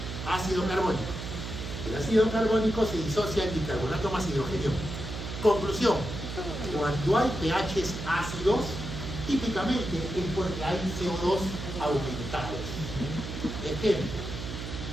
ácido carbónico. El ácido carbónico se disocia en bicarbonato más hidrogenio. Conclusión, cuando hay pHs ácidos, típicamente es porque hay CO2 aumentados. Ejemplo,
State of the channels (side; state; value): right; noise; hum, 7 dB below the sound